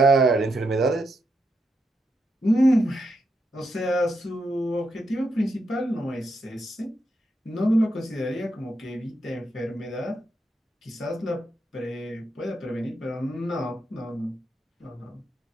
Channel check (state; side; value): normal; both; correlation 0.82